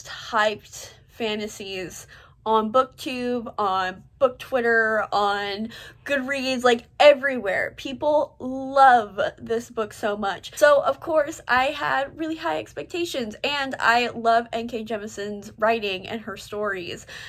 hyped fantasies on BookTube, on Book Twitter, on Goodreads, like everywhere. People love this book so much. So of course I had really high expectations, and I love N.K. Jemisin's writing and her stories,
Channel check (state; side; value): identical; both; correlation 1.00